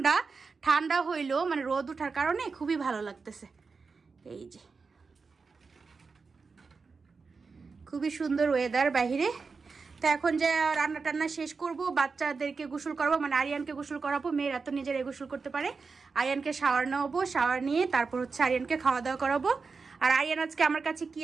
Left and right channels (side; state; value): left; quieter; 4.7 dB